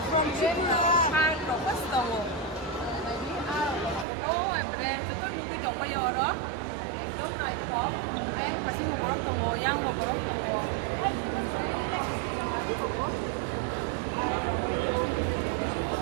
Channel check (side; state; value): left; drops out; at 4.0 s